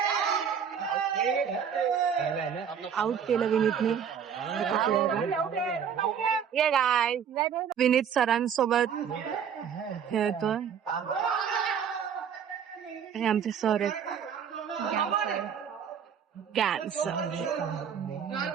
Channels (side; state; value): left; quieter; 7.7 dB